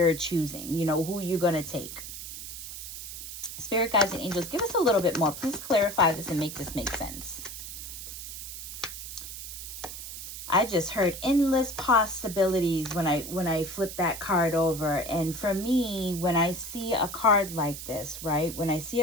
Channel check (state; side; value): noise; right; hiss, 9 dB below the sound